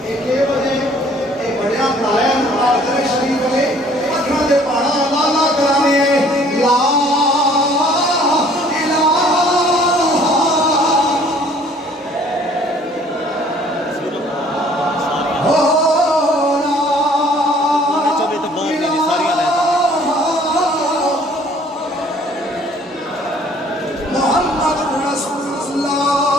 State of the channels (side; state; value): both; normal; correlation 0.57